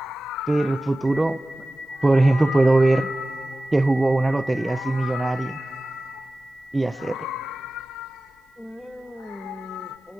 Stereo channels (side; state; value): both; normal; correlation 0.96